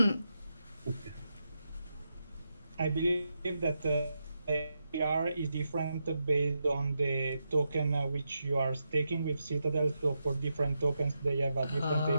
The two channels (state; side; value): inverted; both; correlation -0.86